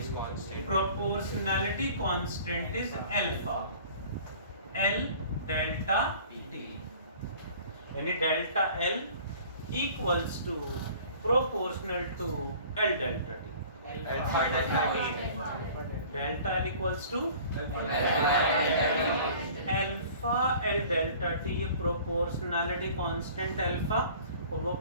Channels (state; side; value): inverted; both; correlation -0.48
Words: is constant? Proportionality constant is alpha, L delta T। यानी delta L equals to proportional to L delta T। Alpha delta T. Delta L equals to alpha L delta T। ये proportionality constant alpha और वो